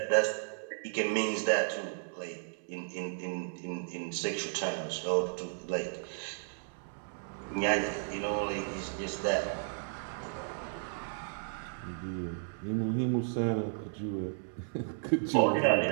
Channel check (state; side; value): silent; left; 55 dB below the other